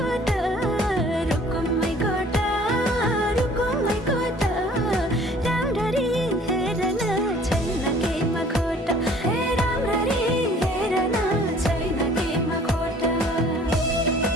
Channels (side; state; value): both; normal; correlation 0.53